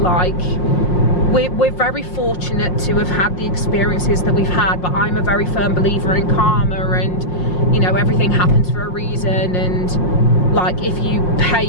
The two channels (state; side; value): late; right; 5.6 ms